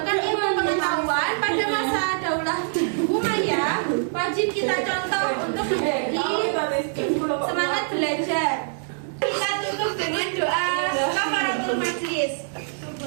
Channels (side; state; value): left; silent; digital silence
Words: ilmu pengetahuan pada masa Daulah Umayyah wajib kita contoh untuk menjadi semangat belajar. Kita tutup dengan doa kafaratul majlis.